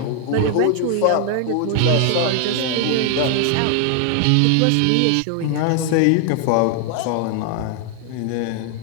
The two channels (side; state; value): both; different; correlation 0.00